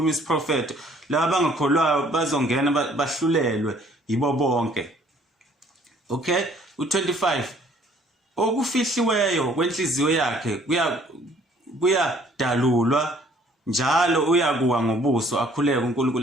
isiprofetho, laba abangakholwayo bazongena bahlulelwe yibo bonke. Okay, u25 okufihliweyo kwenhliziyo yakhe kuyadalulwa njalo uyakuwa ngobuso, akhuleke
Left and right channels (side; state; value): both; normal; correlation 0.59